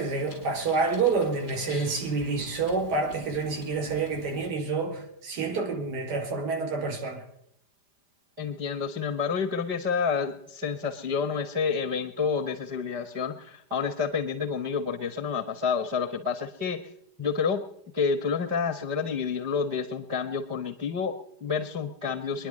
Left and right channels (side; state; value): left; late; 5.0 ms